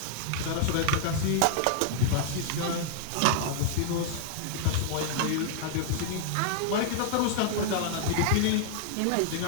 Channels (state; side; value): different; both; correlation -0.01